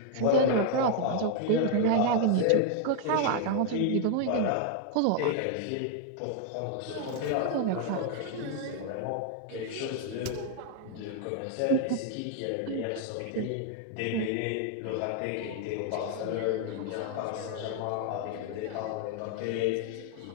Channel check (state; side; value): different; both; correlation 0.00